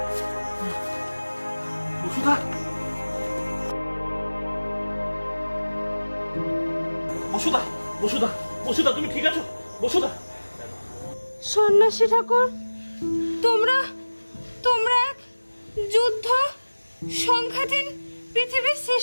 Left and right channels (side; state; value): both; inverted; correlation -1.00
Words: বসুদা, বসুদা, বসুদা, বসুদা, তুমি ঠিক আছো? বসুদা। সন্ন্যাসী ঠাকুর, তোমরা তোমরা এক যুদ্ধ সংঘাতীন পৃথিবীর